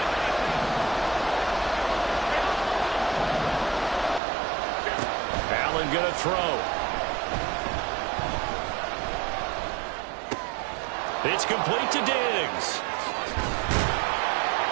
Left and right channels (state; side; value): drops out; left; at 4.2 s